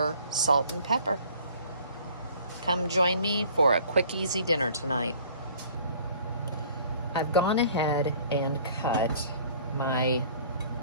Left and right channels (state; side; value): inverted; both; correlation -0.53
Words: salt and pepper. Come join me for a quick, easy dinner tonight. I've gone ahead and cut my